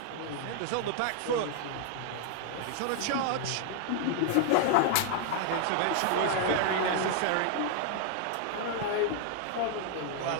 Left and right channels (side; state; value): both; different; correlation 0.00